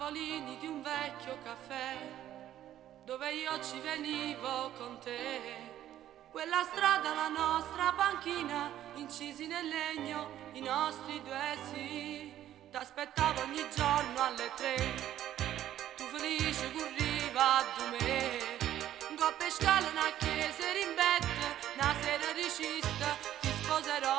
tavolini di un vecchio caffè dove io ci venivo con te. Quella strada, la nostra panchina, incisi nel legno, i nostri due sì. T'aspettavo ogni giorno alle 3, tu felice corriva a me. Go per scala una chiesa rimbetta, una sera ricista, ti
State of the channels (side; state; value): left; quieter; 12.2 dB